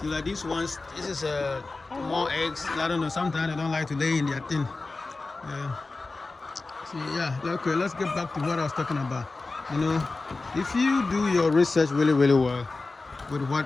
like these ones, this is more eggs. I don't know, sometimes they don't like to lay in their thing. Okay, let's get back to what I was talking about. If you do your research really, really well with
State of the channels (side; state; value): right; quieter; 3.5 dB